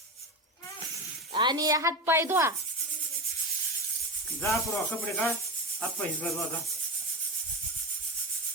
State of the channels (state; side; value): normal; both; correlation 0.20